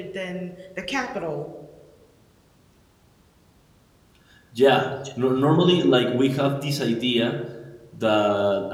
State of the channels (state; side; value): identical; both; correlation 1.00